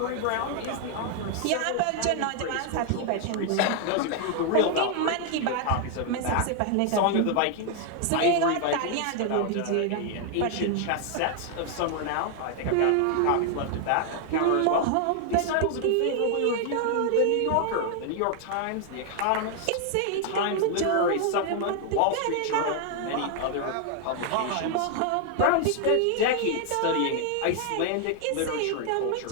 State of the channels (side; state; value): both; different; correlation 0.00